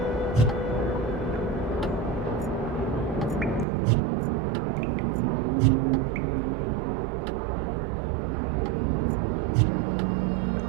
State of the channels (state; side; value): drops out; left; at 3.7 s